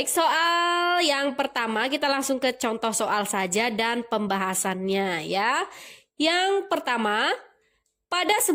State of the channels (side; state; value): both; identical; correlation 1.00